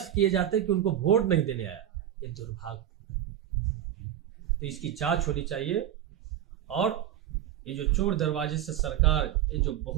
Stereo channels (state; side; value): quieter; left; 11.1 dB